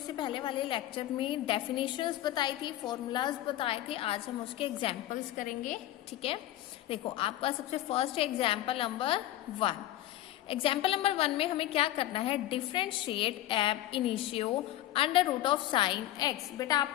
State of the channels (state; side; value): quieter; right; 14.2 dB